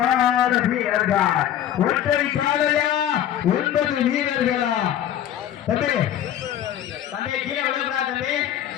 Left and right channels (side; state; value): right; quieter; 11.0 dB